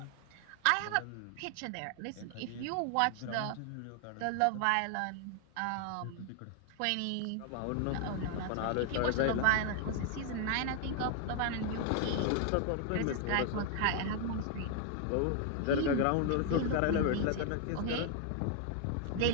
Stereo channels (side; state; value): both; different; correlation 0.00